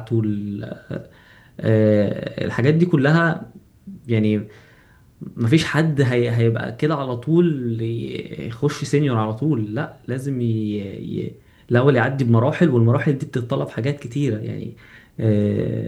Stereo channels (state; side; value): identical; both; correlation 1.00